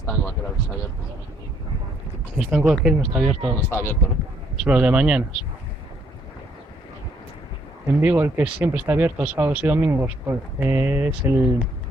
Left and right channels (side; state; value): both; normal; correlation 0.68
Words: aquel está abierto. El estanco aquel no está abierto. No está abierto, ¿no? Solo de mañanas. En Vigo el que siempre está abierto sábados y domingos es el